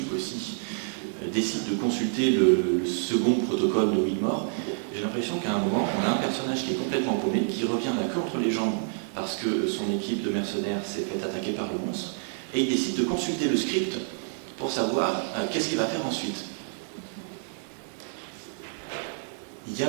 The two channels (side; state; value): left; silent; digital silence